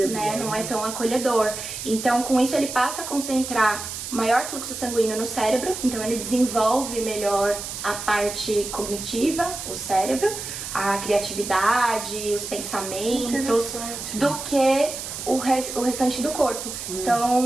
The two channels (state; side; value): noise; right; hiss, 7 dB below the sound